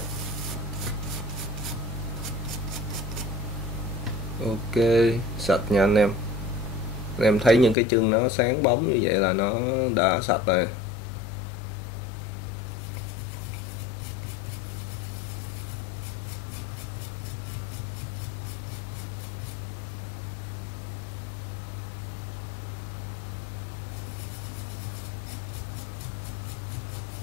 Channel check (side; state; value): right; drops out; at 7.8 s